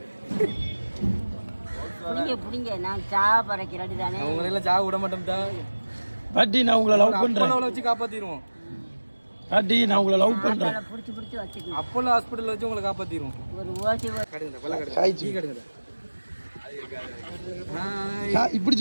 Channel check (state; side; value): inverted; both; correlation -1.00